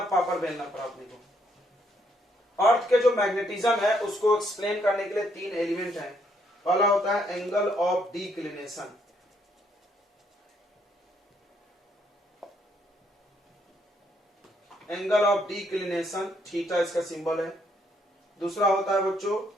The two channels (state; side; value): normal; both; correlation 0.71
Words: पापड़ बेलना पड़ा अपने को। अर्थ के जो मैग्नेटिज्म है उसको एक्सप्लेन करने के लिए तीन एलिमेंट हैं। पहला होता है angle of declination, angle of declination, theta इसका सिंबल है। दूसरा होता है बच्चों